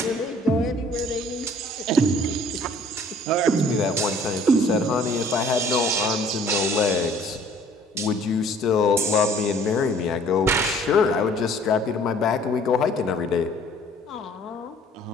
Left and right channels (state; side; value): normal; both; correlation 0.55